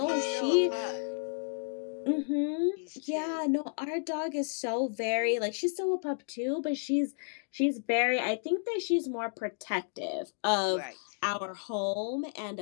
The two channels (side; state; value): right; silent; digital silence